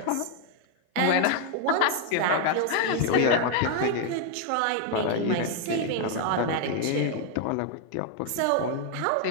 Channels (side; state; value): both; different; correlation 0.01